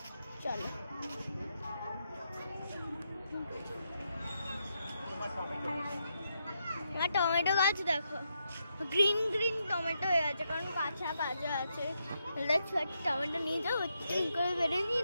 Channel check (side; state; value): both; inverted; correlation -0.82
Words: চলো আমার টমেটো গাছ দেখো, গ্রিন গ্রিন টমেটো হয়ে গেছে, কারণ কাঁচা কাঁচা আছে। দেখছো একটা টমেটো নিয়ে যাবো, ঠিক করে বেড়ে নিয়ে